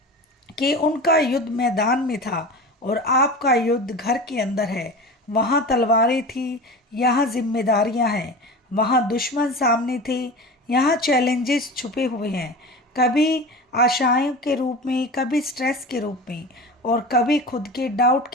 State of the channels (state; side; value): normal; both; correlation 0.32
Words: कि उनका युद्ध मैदान में था और आपका युद्ध घर के अंदर है। वहाँ तलवारें थी, यहाँ जिम्मेदारियाँ हैं। वहाँ दुश्मन सामने थे, यहाँ चैलेंजेस छुपे हुए हैं। कभी आशाओं के रूप में, कभी स्ट्रेस के रूप में और कभी खुद के डाउट